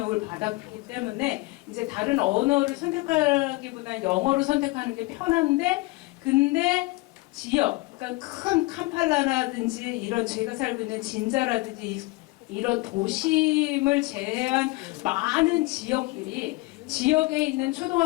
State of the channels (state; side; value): quieter; right; 22.4 dB